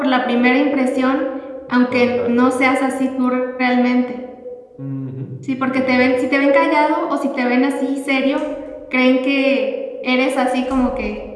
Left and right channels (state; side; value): identical; both; correlation 1.00